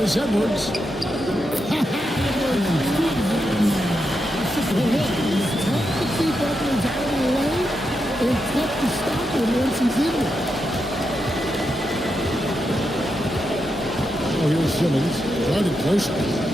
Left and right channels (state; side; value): normal; both; correlation 0.85